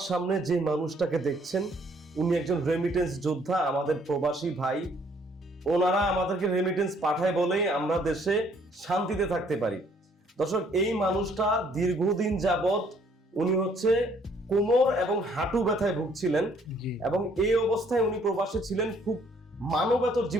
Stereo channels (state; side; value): normal; both; correlation 0.64